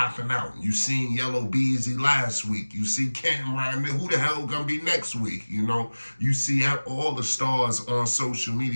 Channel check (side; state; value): both; inverted; correlation -1.00